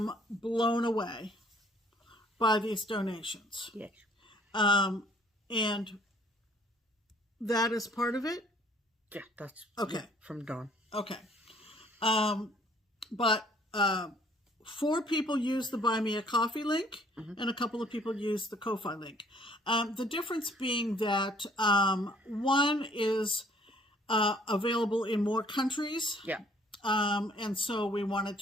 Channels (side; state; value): both; normal; correlation 0.58